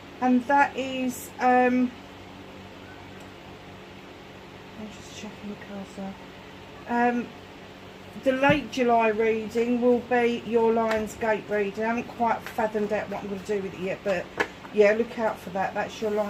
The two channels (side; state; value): both; identical; correlation 1.00